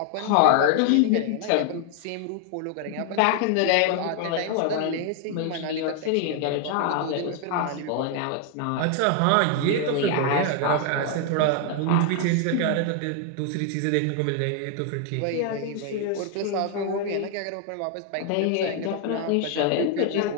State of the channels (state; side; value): different; both; correlation 0.00